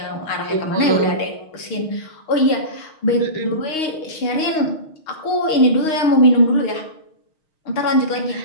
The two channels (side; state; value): right; late; 6.4 ms